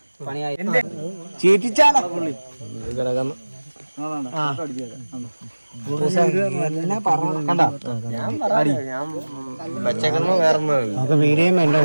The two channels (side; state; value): both; inverted; correlation -1.00